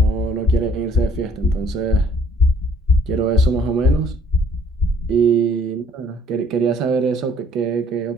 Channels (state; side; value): normal; both; correlation 0.59